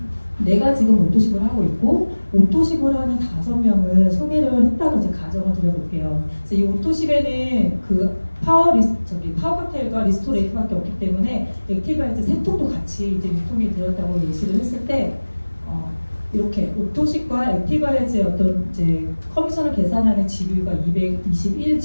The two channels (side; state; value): both; inverted; correlation -1.00